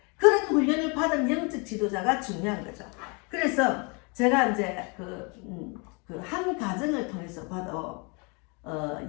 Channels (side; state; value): right; quieter; 32.2 dB